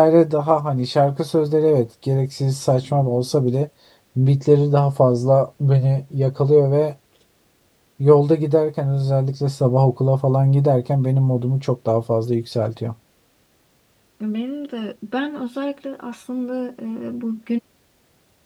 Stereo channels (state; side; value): identical; both; correlation 1.00